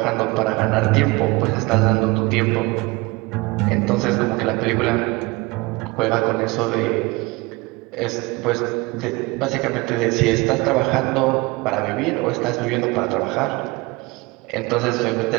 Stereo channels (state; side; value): quieter; left; 24.1 dB